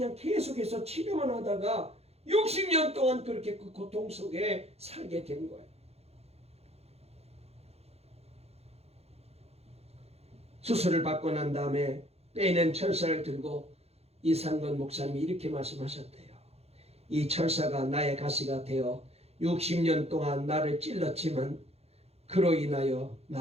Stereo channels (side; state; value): left; late; 0.30 ms